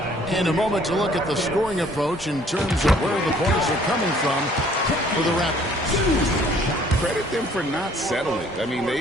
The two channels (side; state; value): both; normal; correlation 0.58